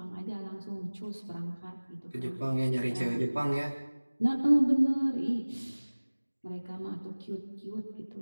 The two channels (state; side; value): inverted; both; correlation -1.00